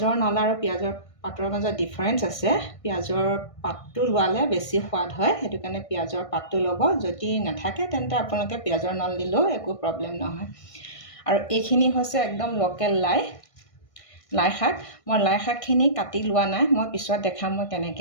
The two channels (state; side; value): late; right; 1.6 ms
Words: নলা আৰু পিয়াজৰ পাতৰ মাজত ডিফাৰেন্স আছে পিয়াজৰ পাতটো লোৱালে বেছি সোৱাদ হয় হেতু কাৰণে পিয়াজৰ পাতটো লব যদি নাথাকে তেন্তে আপোনালোকে পিয়াজৰ নল দিলেও একো প্ৰবলেম নহয় আৰু এইখিনি হৈছে একদম লোকেল লাই শাক মই লাই শাকখিনি কাটি লোৱা নাই মই পিছত দেখাম মই